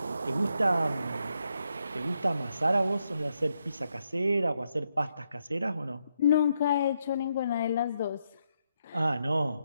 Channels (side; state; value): both; inverted; correlation -0.81